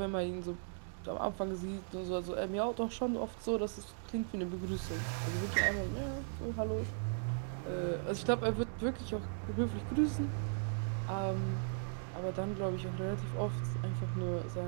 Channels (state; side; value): silent; left; digital silence